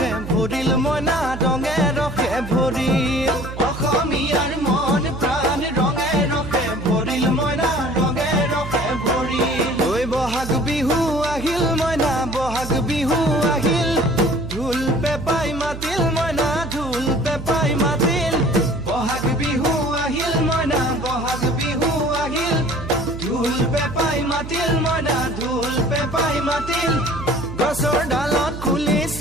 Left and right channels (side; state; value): right; noise; hum, 10 dB below the sound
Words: ভৰিল মইনা ৰঙে ৰসে ভৰিল অসমীয়াৰ মন প্ৰাণ ৰঙে ৰসে ভৰিল মইনা ৰঙে ৰসে ভৰিল ঐ বহাগ বিহু আহিল মইনা বহাগ বিহু আহিল ঢোল পেপাই মাতিল মইনা ঢোল পেপাই মাতিল বহাগ বিহু আহিল মইনা বহাগ বিহু আহিল ঢোল পেপাই মাতিল মইনা ঢোল পেপাই মাতিল গছৰ ডালত খুলি